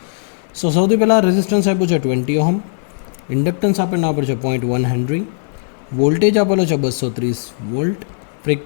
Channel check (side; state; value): right; silent; 59 dB below the other